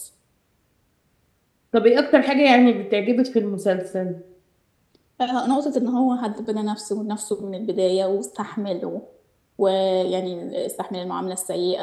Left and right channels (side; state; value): both; identical; correlation 1.00